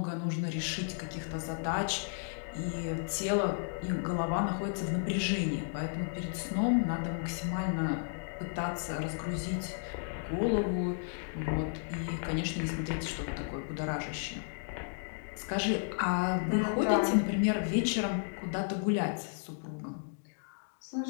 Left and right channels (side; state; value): right; silent; digital silence